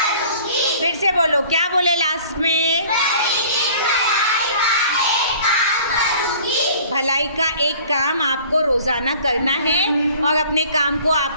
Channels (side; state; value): both; inverted; correlation -0.49